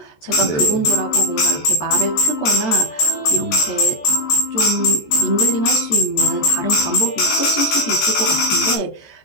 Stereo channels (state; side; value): late; right; 14 ms